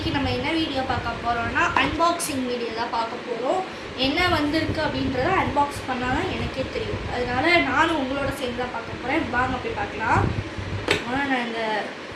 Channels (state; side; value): identical; both; correlation 1.00